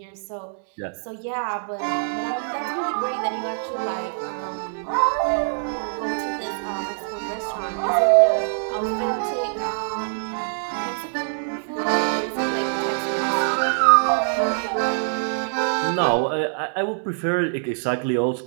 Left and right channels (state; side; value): silent; left; digital silence